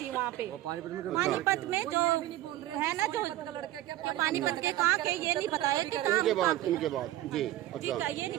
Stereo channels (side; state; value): left; quieter; 14.7 dB